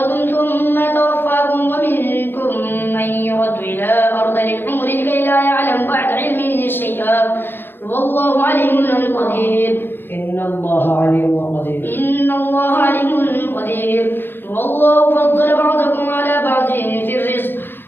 ثم يتوفاكم ومنكم من يرد إلى أرض العمر لكي لا يعلم بعد علم شيئا والله عليم قدير إن الله عليم قدير والله فضل بعضكم على بعض في الرزق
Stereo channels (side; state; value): right; late; 0.10 ms